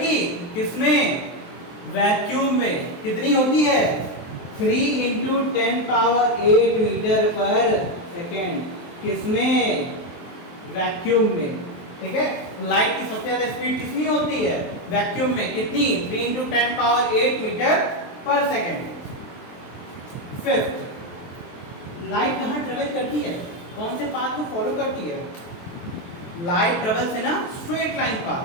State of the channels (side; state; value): right; late; 23 ms